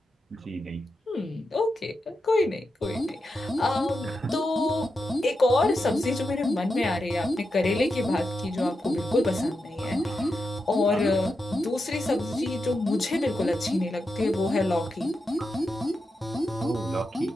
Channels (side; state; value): both; normal; correlation 0.88